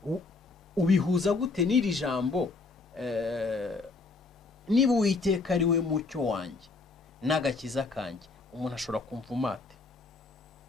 Ubihuza gute n'iri jambo? Niba Uwiteka ari we mucyo wanjye n'agakiza kanjye, umuntu ashobora kumva umate.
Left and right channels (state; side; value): quieter; right; 3.9 dB